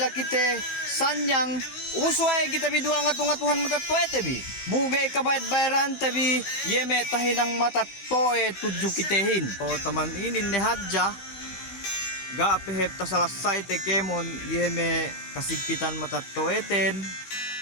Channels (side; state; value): right; late; 16 ms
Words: kite sanyang umusway kita bidua nga tungatuhan matattoete bi. Bugay kabayad bayaran tabi yeme tahinang matattoe tudyo kitehin. O taman inin ni hadya gapehep tasalasay te kemon yeme kasigpitan matattoeten